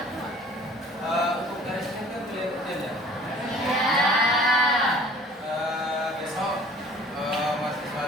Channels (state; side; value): normal; both; correlation 0.50